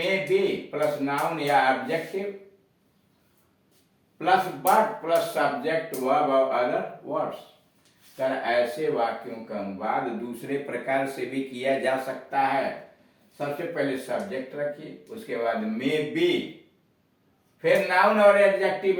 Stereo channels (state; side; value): identical; both; correlation 1.00